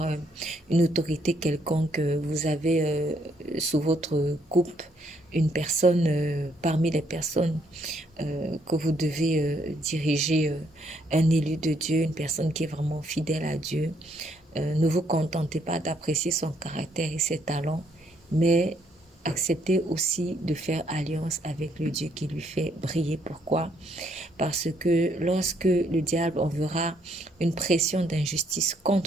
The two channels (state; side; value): normal; both; correlation 0.71